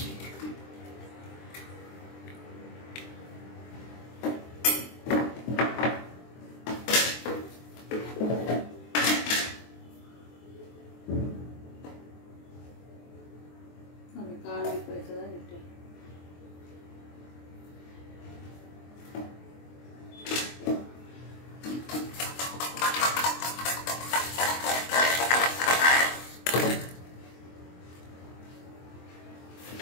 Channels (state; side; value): late; right; 23 ms